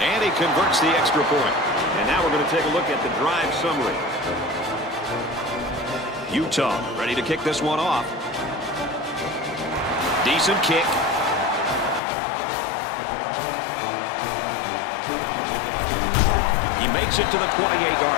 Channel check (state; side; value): drops out; right; at 12.0 s